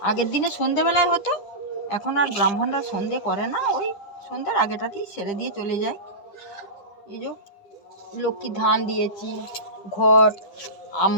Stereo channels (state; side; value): late; right; 9.9 ms